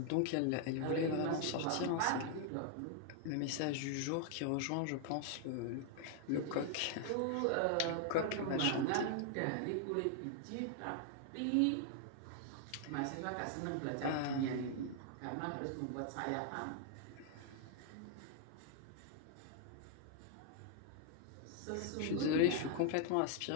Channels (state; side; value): different; both; correlation 0.00